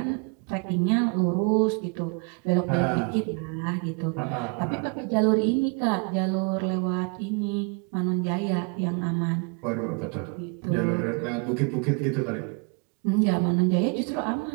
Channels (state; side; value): quieter; left; 34.5 dB